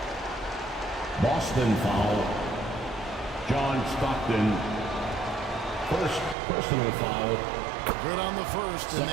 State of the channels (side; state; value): left; drops out; at 6.4 s